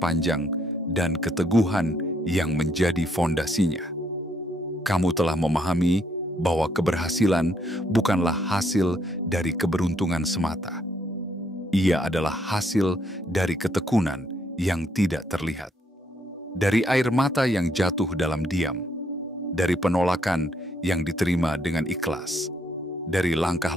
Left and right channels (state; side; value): normal; both; correlation 0.71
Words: dan keteguhan yang menjadi fondasinya. Kamu telah memahami bahwa keberhasilan bukanlah hasil dari keberuntungan semata. Ia adalah hasil dari ketekunan yang tidak terlihat. Dari air mata yang jatuh dalam diam, dari penolakan yang diterima dengan ikhlas, dari